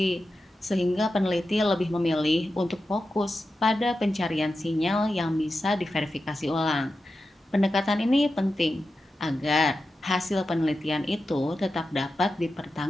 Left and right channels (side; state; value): both; normal; correlation 0.91